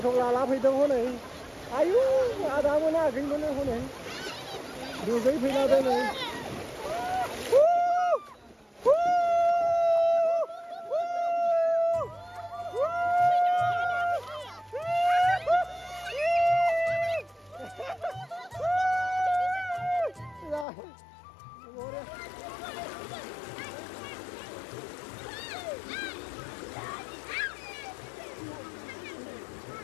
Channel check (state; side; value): drops out; right; at 20.7 s